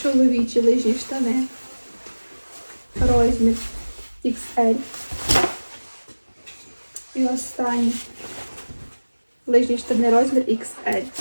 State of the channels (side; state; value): both; inverted; correlation -1.00